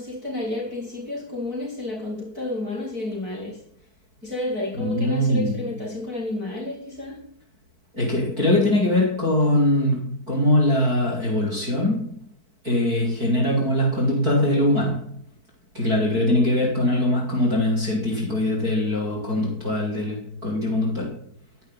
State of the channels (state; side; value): late; left; 4.6 ms